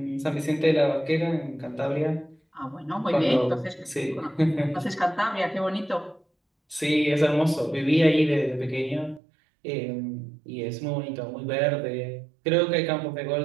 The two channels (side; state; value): left; drops out; at 9.2 s